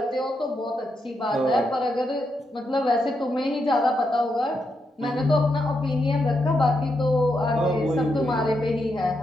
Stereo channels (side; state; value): both; normal; correlation 0.82